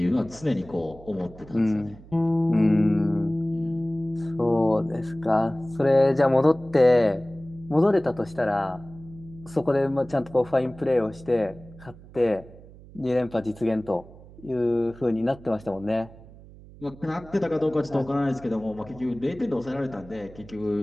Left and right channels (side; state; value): right; noise; hum, 20 dB below the sound